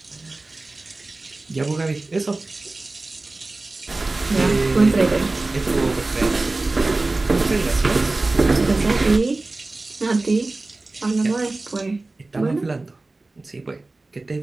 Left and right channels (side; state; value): left; quieter; 3.2 dB